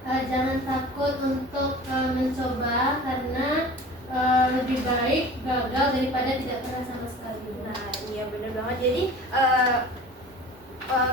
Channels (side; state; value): both; normal; correlation 0.41